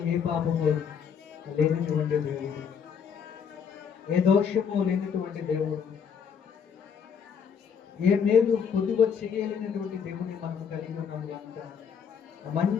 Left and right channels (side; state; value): right; quieter; 7.1 dB